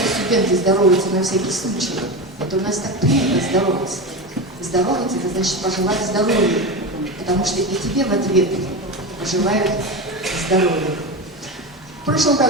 здороваются на всякий случай, это у нас так принято здороваться. Здороваться — это значит пожелать здоровья, потому что и тебе в ответ пожелают здоровья. В прошлом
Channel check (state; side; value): normal; both; correlation 0.21